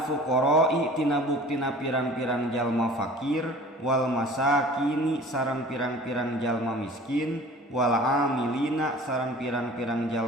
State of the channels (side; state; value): both; normal; correlation 0.45